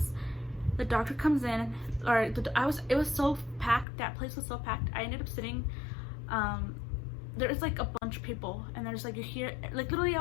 The doctor comes in, it was so packed. That place was so packed. I ended up sitting, there's like a bunch of people, and there's like, you hear, like, literally I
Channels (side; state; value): right; drops out; at 3.9 s